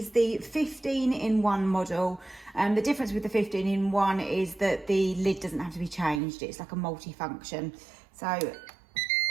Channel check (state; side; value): drops out; left; at 6.2 s